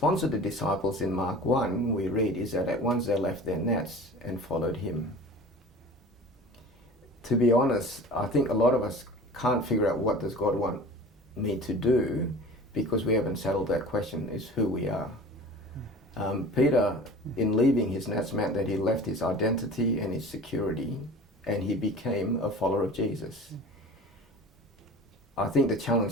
of the disciples in Mark 1, we read, is that at once they left their nets and followed Him. To be honest, I think a lot of us can't figure out what does God want me to do, because we haven't settled that question, is who we are. Peter, in leaving his nets, meant that he left his identity and his security, and he became a follower of Jesus. I think the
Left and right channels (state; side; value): normal; both; correlation 0.40